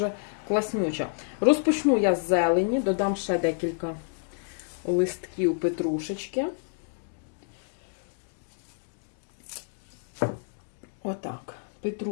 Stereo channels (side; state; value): right; silent; digital silence